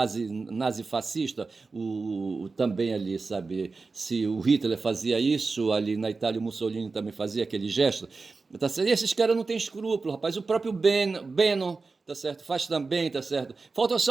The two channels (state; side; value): quieter; left; 4.1 dB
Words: também ali, sabe? Se o Hitler fazia isso, ali na Itália o Mussolini também fazia aquele gesto, tá certo? E esses caras não têm escrúpulo, rapaz. O próprio Bannon, tá certo? Faz também, tá certo? Falta